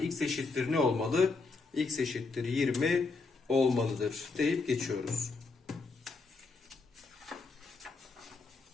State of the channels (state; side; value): quieter; right; 4.0 dB